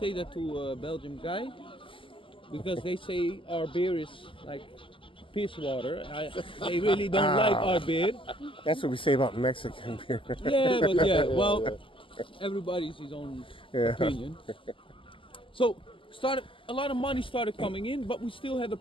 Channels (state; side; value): late; right; 0.25 ms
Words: that to a Belgian guy. Because they say our beer is like piss water. They really don't like our beer. That's what we say about Mexican beer. Well, everybody's his own opinion. So a lot of money started coming in, but we still had the